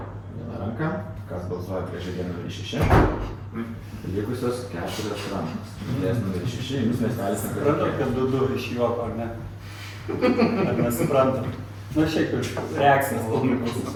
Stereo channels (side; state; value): both; identical; correlation 1.00